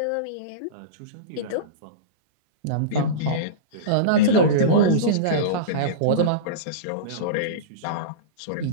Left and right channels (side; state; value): both; different; correlation -0.06